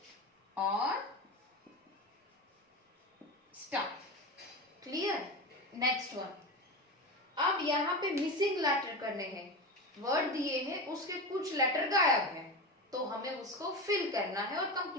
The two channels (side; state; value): both; normal; correlation 0.23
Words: और स्टार। क्लियर? नेक्स्ट वन, अब यहाँ पे मिसिंग लेटर करने हैं, वर्ड दिए हैं उसके कुछ लेटर गायब है, तो हमें उसको फिल करना है और